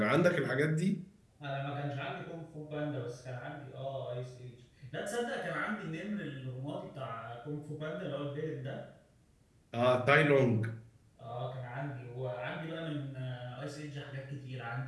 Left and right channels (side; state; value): both; identical; correlation 1.00